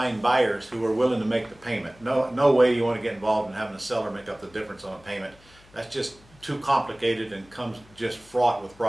buyers who are willing to make the payment. No way you want to get involved in having a seller make up the difference on a payment. That's just too complicated and comes just fraught with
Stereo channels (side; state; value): left; noise; hum, 27 dB below the sound